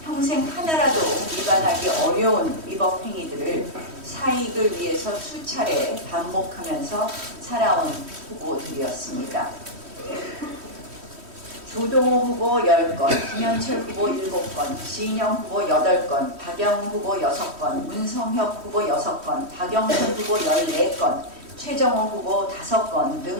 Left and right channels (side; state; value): left; late; 3.1 ms